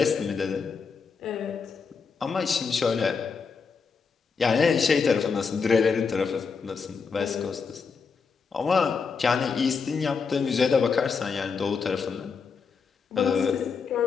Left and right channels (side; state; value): right; quieter; 5.4 dB